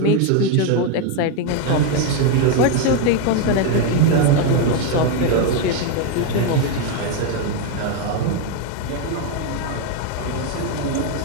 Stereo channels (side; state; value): both; different; correlation 0.01